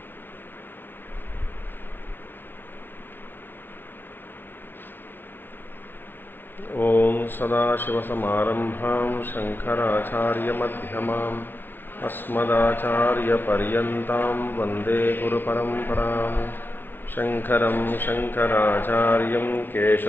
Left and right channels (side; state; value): right; late; 0.099 ms